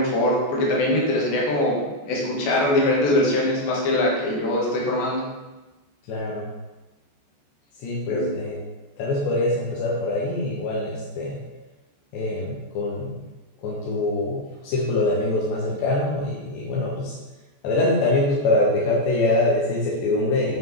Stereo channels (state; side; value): late; right; 14 ms